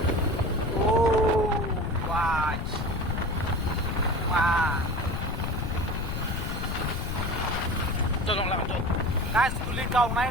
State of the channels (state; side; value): noise; left; rumble, 3 dB below the sound